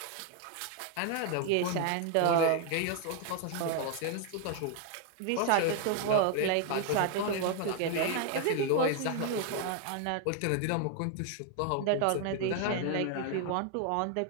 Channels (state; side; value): different; both; correlation 0.01